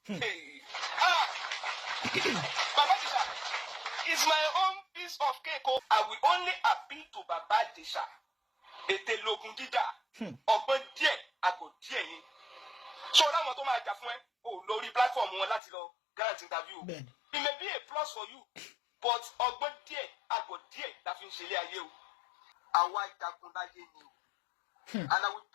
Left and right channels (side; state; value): right; drops out; at 15.6 s